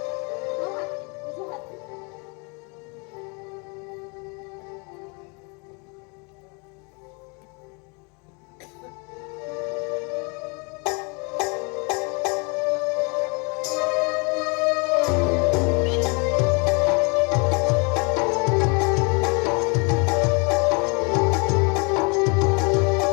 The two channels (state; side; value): quieter; right; 32.2 dB